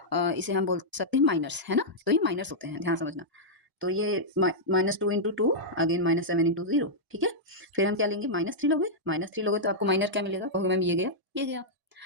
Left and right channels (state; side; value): late; left; 1.0 ms